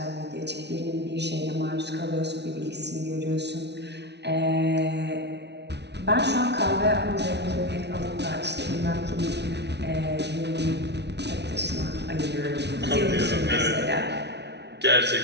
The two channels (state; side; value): late; left; 0.50 ms